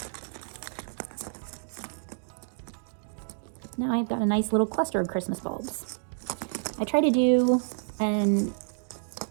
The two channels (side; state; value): left; silent; digital silence